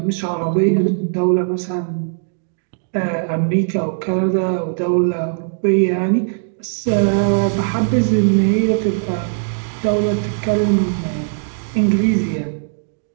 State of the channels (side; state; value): left; silent; digital silence